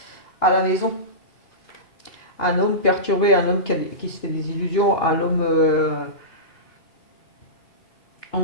À la maison. Un homme perturbé, un homme qui se fait des illusions, un homme,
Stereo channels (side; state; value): right; late; 3.1 ms